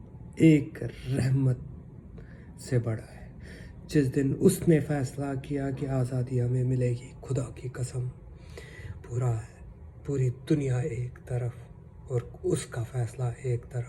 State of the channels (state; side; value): identical; both; correlation 1.00